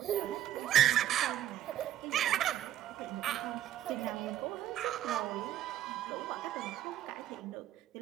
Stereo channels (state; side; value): quieter; left; 12.1 dB